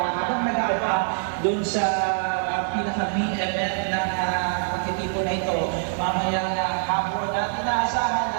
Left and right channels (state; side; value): silent; left; digital silence